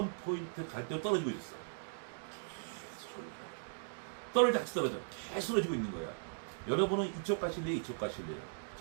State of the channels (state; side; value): silent; left; digital silence